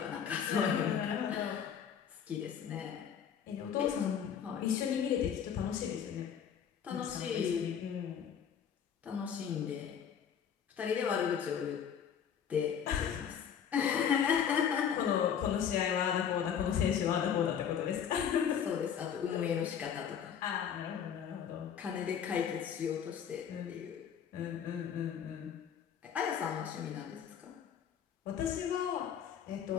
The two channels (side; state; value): right; quieter; 8.2 dB